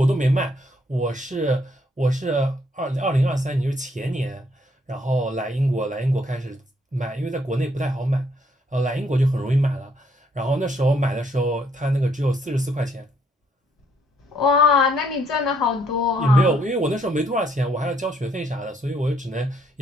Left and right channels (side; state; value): both; normal; correlation 0.70